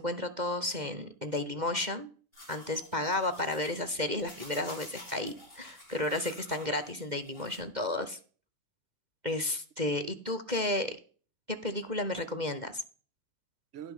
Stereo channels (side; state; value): left; late; 2.1 ms